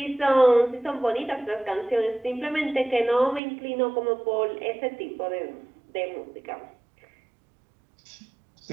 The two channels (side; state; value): left; drops out; at 3.4 s